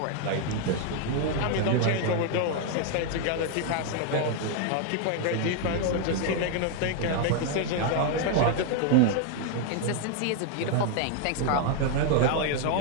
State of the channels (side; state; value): both; different; correlation 0.00